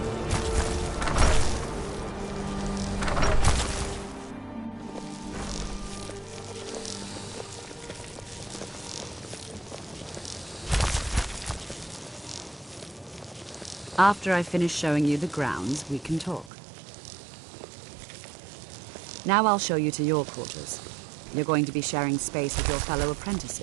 After I finish showing you the grounds, we can talk. Now I'll show you to your quarters. You're going to be sharing space with your fellow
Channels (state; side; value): drops out; left; at 16.5 s